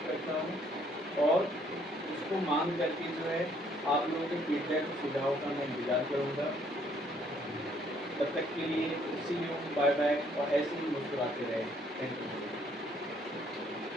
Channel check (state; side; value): normal; both; correlation 0.65